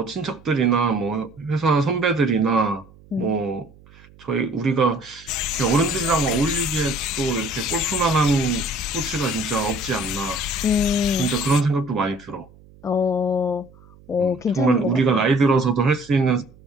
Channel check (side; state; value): right; noise; hum, 25 dB below the sound